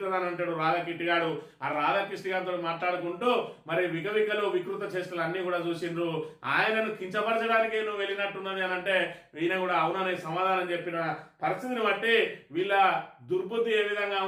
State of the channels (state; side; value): identical; both; correlation 1.00